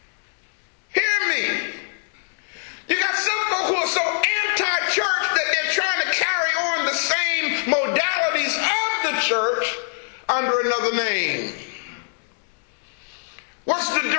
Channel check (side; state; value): right; silent; digital silence